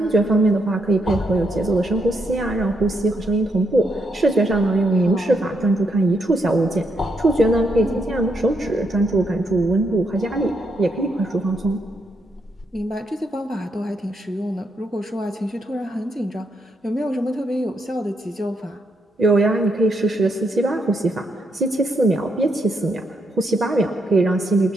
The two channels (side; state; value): both; normal; correlation 0.78